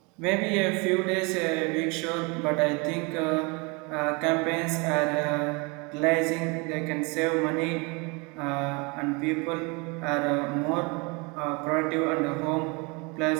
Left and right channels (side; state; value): left; quieter; 29.4 dB